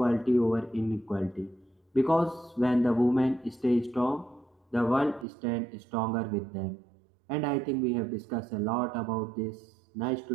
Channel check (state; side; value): drops out; left; at 5.2 s